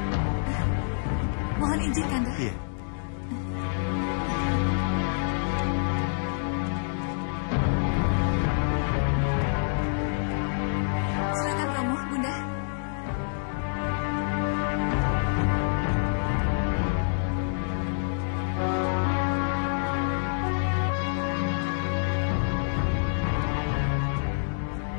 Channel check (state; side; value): silent; right; digital silence